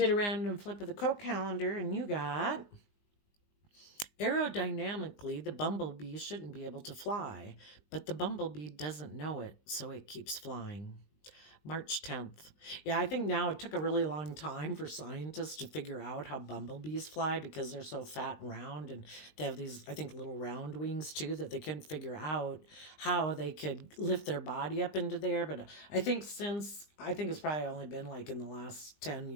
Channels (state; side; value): late; right; 19 ms